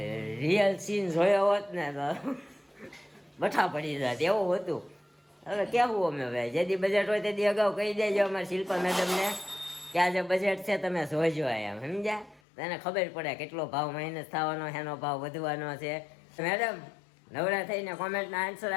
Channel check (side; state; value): right; drops out; at 12.4 s